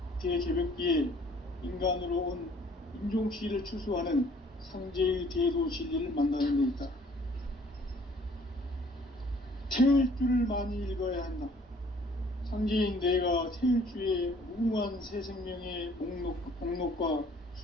대개벽기에 인간으로 온 인종씨를 추수하는 상제의 대도 진리를 만나는 데 있다. 태을 줄을 많이 읽어야 한다. 상제인 내가 태을 주에 무궁한 새 생명의 목록과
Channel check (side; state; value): both; normal; correlation 0.57